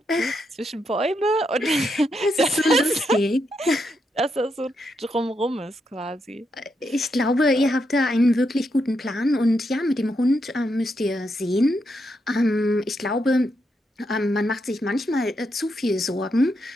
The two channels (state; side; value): normal; both; correlation 0.81